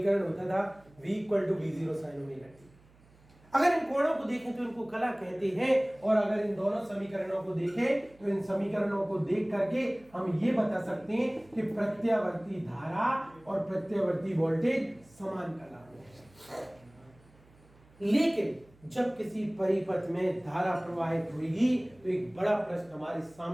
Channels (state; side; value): noise; right; hum, 28 dB below the sound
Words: होता था V = V0 sin omega t। अगर इन कोणों को देखें तो इनको कला कहते हैं और अगर इन दोनों समीकरणों को देखें तो इन समीकरणों को देख करके हम ये बता सकते हैं कि प्रत्यावर्ती धारा और प्रत्यावर्ती वोल्टेज समान कला में। लेकिन जब किसी परिपथ में धारा प्रवाहित होगी तो एक बड़ा प्रश्न हमारे